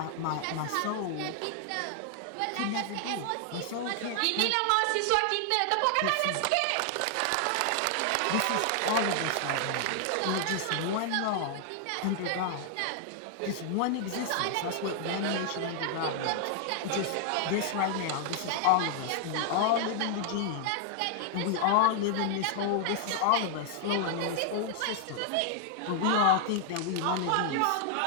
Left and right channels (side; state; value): both; different; correlation 0.00